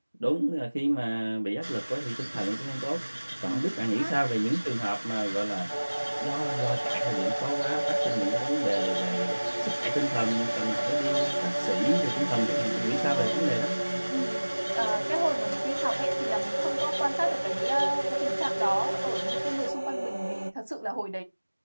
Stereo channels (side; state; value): both; inverted; correlation -1.00